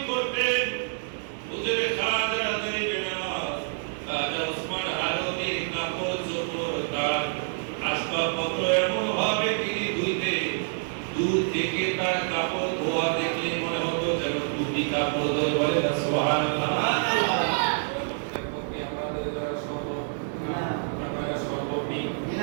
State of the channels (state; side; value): silent; left; digital silence